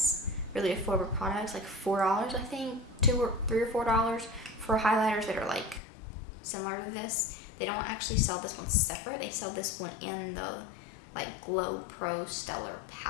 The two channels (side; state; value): right; drops out; at 5.8 s